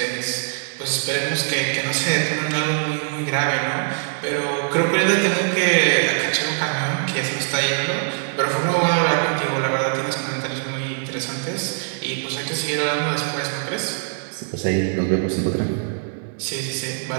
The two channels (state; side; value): silent; left; digital silence